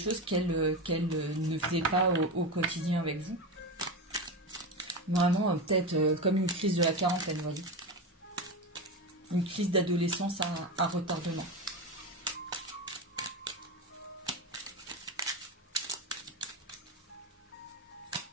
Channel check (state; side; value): normal; both; correlation 0.19